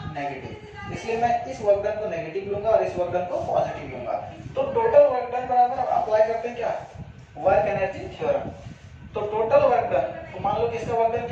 नेगेटिव। इसलिए मैं इस वर्क डन को नेगेटिव लूंगा और इस वर्क डन को पॉजिटिव लूंगा। तो टोटल वर्क डन बराबर अप्लाई करते हैं क्या, वर्क एनर्जी थ्योरम। तो टोटल वर्क डन, तो मान लो कि इसका वर्क डन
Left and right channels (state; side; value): identical; both; correlation 1.00